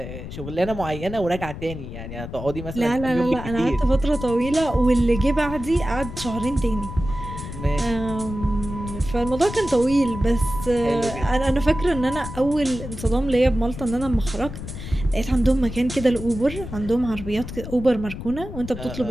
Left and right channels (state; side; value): noise; left; rumble, 9 dB below the sound